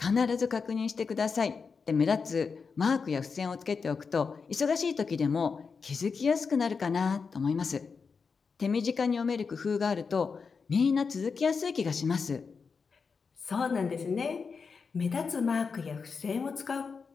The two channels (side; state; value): right; quieter; 5.3 dB